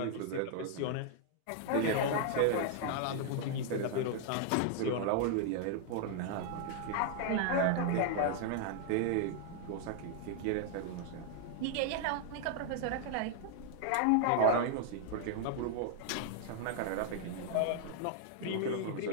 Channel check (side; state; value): both; different; correlation -0.01